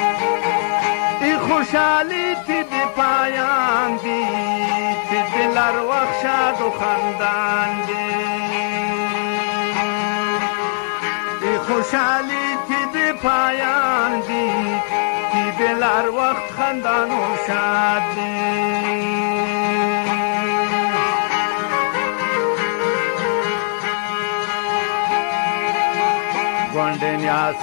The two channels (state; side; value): silent; right; 66 dB below the other